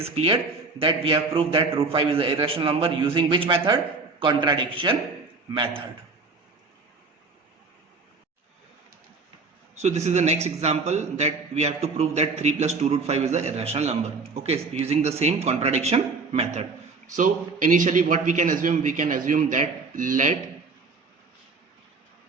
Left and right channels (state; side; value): quieter; left; 4.1 dB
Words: clear that we have proved that root 5 is an irrational number using which method? Contradiction method. So this is the next example that we have to prove that 3 plus 2 root 5 is an irrational number. Okay, so using the same contradiction method. So initially what we can assume that let